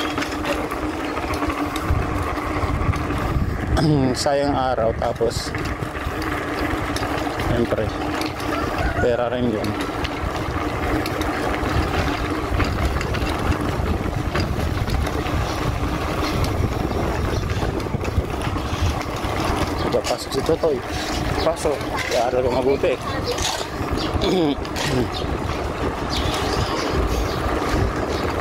Sayang araw. Tapos siyempre pera rin yun. Pasok si Totoy. Pasok. Kaya ko mabuti.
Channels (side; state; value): both; identical; correlation 1.00